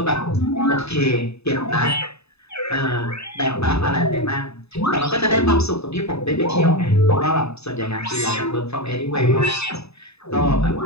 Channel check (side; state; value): right; late; 0.79 ms